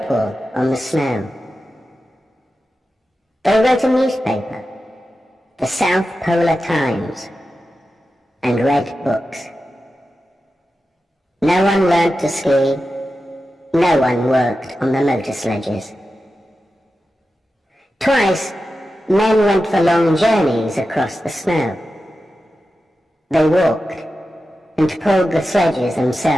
on the snow. They wrote a newspaper, the South Polar Times, and read books. No one learnt to ski, no one worked on the motor sledges. Twice, men went for long journeys across the snow. They walked and pulled the sledges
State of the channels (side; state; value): both; normal; correlation 0.92